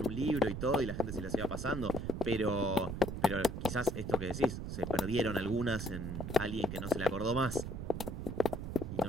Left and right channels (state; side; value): noise; right; rumble, 5 dB below the sound